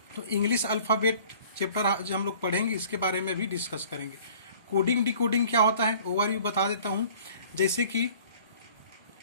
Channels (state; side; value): inverted; both; correlation -0.51